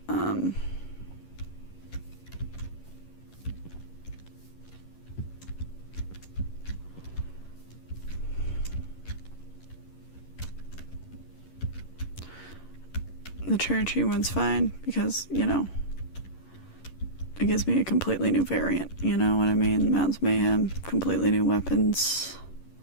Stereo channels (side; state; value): right; late; 11 ms